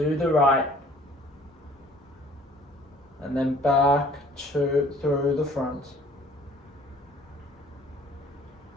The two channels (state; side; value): normal; both; correlation 0.54